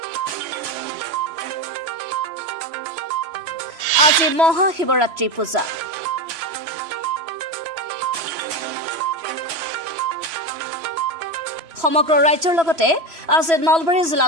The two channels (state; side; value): late; left; 3.0 ms